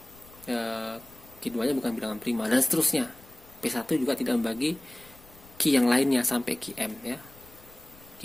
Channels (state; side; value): noise; left; rumble, 24 dB below the sound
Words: Q2 nya bukan bilangan prima dan seterusnya. P1 juga tidak membagi Q yang lainnya sampai QM ya.